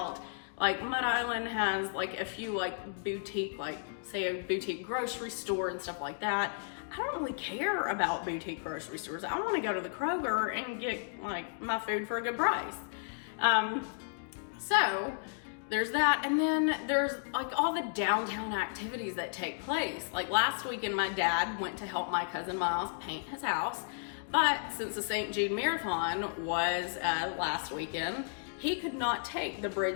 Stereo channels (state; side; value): silent; right; digital silence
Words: Like, Mud Island has like a few like boutique, like say a boutique grocery store and stuff like that. I don't really care about boutique grocery stores. I want to go to the Kroger and get like my food for a good price. So there's that, and then there's like all the downtown activities that take place. Like last weekend, my dad went to help my cousin Miles paint his house, but since the St. Jude Marathon was last weekend, he could not take the